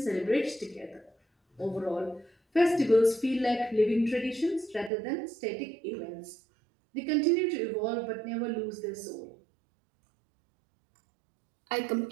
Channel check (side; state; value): left; drops out; at 4.9 s